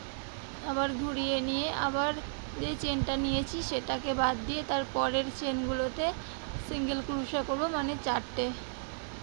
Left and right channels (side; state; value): left; silent; digital silence